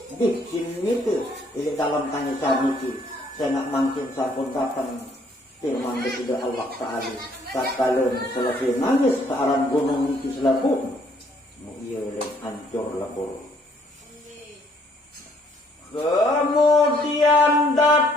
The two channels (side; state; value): both; normal; correlation 0.65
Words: Di sini itu, ini dalam tangisan itu, saya nak mungkin sampun datang firman kepada Allah Ta'ala. Tak kalian selesai nangis ke arah gunung itu selaput, iya hancur lebur. Kemudian